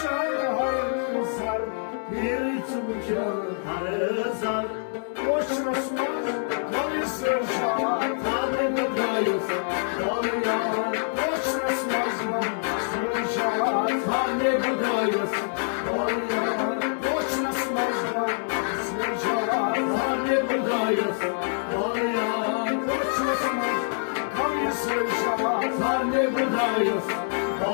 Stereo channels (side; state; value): right; silent; 61 dB below the other